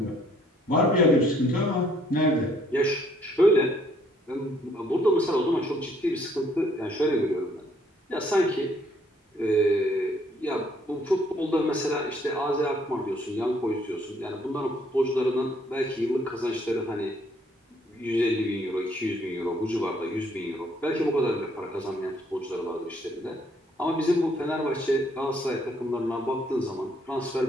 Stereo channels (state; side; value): normal; both; correlation 0.65